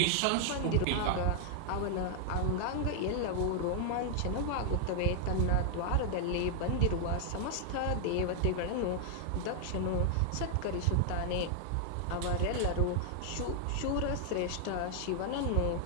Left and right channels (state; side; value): different; both; correlation 0.00